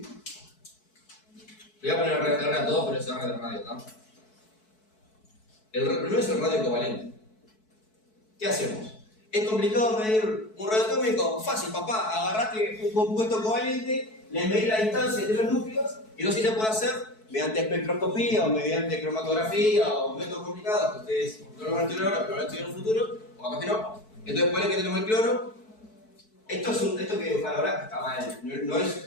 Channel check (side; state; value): right; late; 4.6 ms